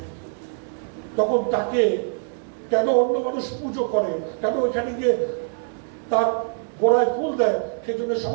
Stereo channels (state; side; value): silent; left; 63 dB below the other